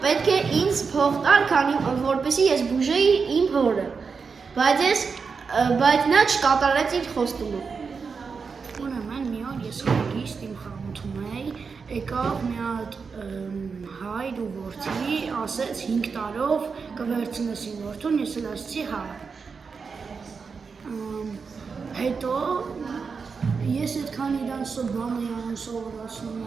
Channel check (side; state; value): left; quieter; 5.3 dB